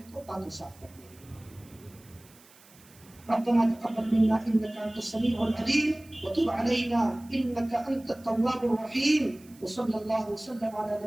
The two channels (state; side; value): noise; right; hiss, 25 dB below the sound